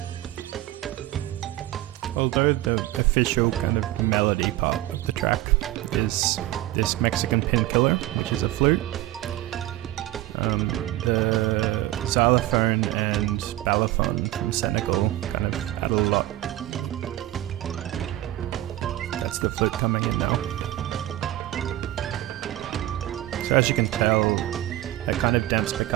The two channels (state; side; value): quieter; left; 15.7 dB